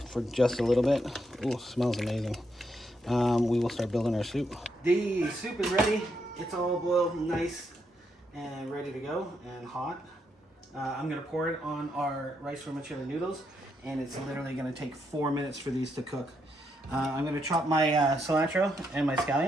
for just a little bit, ooh, smells amazing, we will start building our soup. The soup is ready. It's all boiled nice and ready to go and hot. I'm gonna pour it on our rice vermicelli noodles, and it's literally gonna take 4 minutes for these to cook. I'm gonna chop my cilantro and my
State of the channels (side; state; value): both; normal; correlation 0.79